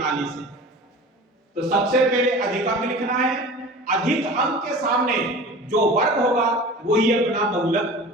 है। तो सबसे पहले अधिक अंक लिखना है, अधिक अंक के सामने जो वर्ग होगा वही अपना बहुलक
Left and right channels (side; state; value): both; normal; correlation 0.38